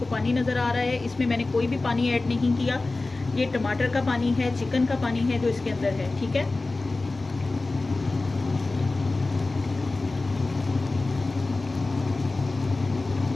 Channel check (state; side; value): quieter; right; 3.3 dB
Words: पानी नज़र आ रहा है। इसमें मैंने कोई भी पानी ऐड नहीं किया, ये टमाटर का पानी है, चिकन का पानी है जो इसके अंदर है। ठीक है,